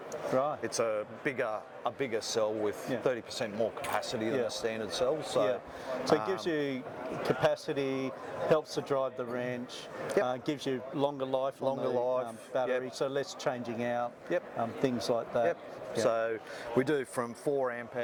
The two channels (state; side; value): identical; both; correlation 1.00